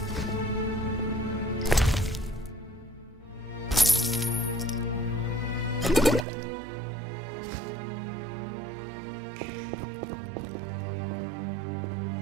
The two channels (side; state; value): left; drops out; at 6.2 s